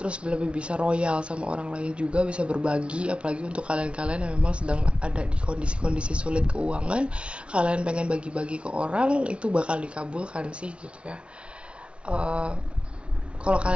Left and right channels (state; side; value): late; left; 0.059 ms